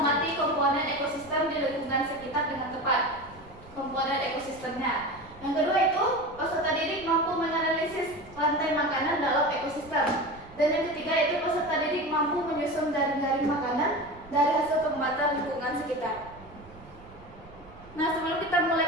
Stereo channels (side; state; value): right; noise; rumble, 21 dB below the sound